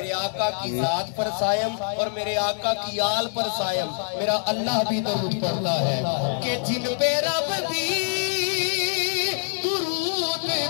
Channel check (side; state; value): right; silent; 62 dB below the other